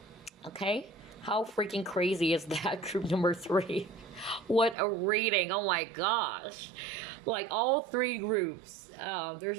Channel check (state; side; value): drops out; left; at 4.8 s